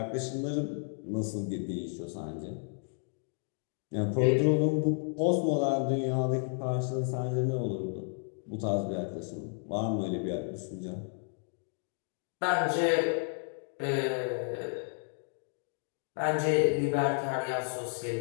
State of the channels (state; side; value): silent; right; 56 dB below the other